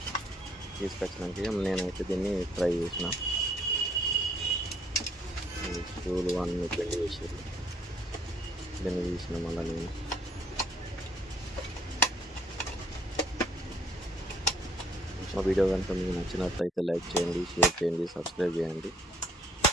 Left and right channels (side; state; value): both; normal; correlation 0.64